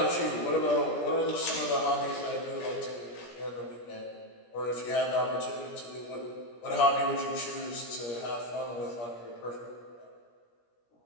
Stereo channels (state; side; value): late; right; 17 ms